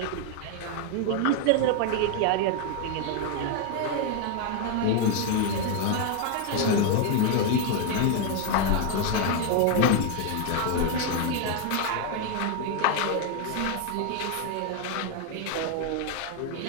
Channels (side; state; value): both; different; correlation 0.01